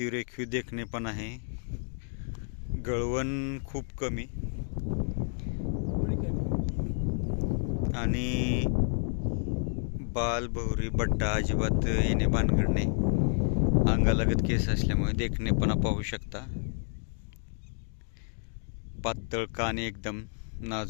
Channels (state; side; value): silent; right; 56 dB below the other